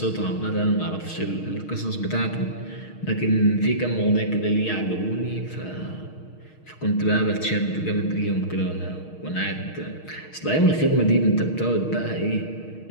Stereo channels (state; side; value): late; right; 6.4 ms